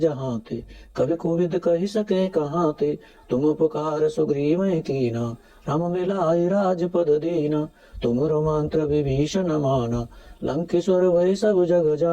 थे, कवि कोविद कहि सके कहाँ थे, तुम उपकार सुग्रीव कीना, राम मिलाए राजपद दीना, तुमरो मंत्र विभीषण माना, लंकेश्वर वै सब जग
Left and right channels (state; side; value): identical; both; correlation 1.00